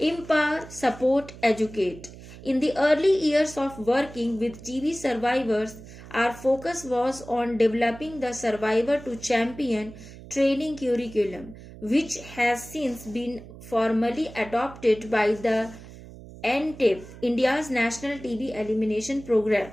support, educate. In the early years of working with TB survivors, our focus was on developing the survivor to champion training curriculum, which has since been formally adopted by the NTEP, India's National TB Elimination Program.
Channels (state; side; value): noise; right; hum, 17 dB below the sound